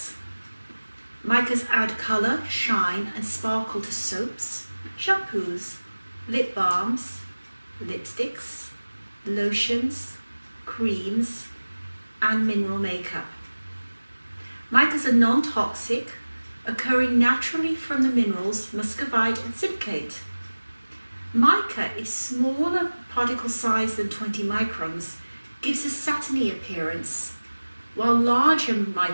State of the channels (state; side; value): inverted; both; correlation -1.00